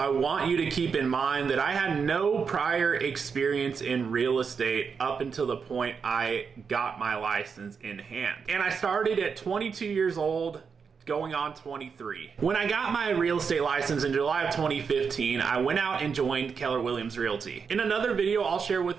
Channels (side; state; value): left; quieter; 5.9 dB